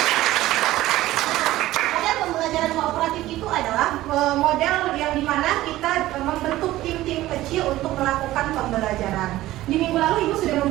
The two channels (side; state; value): left; quieter; 16.0 dB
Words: Model pembelajaran kooperatif itu adalah model yang dimana kita membentuk tim-tim kecil untuk melakukan pembelajaran. Di minggu lalu Ibu sudah